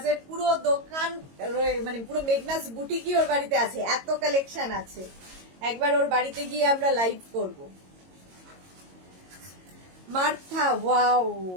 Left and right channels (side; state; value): left; late; 22 ms